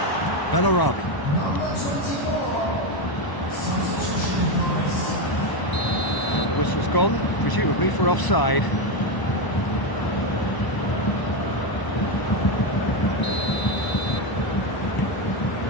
Bellarabi. And the whistle's gone, presumably for offside.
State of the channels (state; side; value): late; right; 1.0 ms